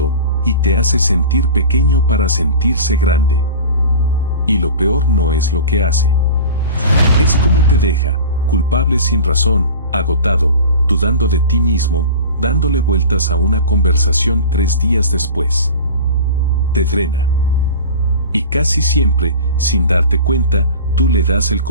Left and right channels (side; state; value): both; inverted; correlation -0.36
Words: y te hace sentir pequeño para sentirse grande. Y lo peor no es lo que hace. Es cómo te deja, culpable sin razón, agotado, dudando de ti mismo, dándole vueltas a una conversación 3 días después. Te drena. Y casi siempre, sin darte cuenta, tú le das el